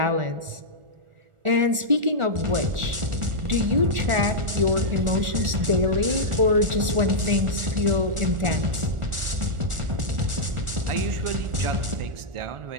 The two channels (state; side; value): late; left; 1.4 ms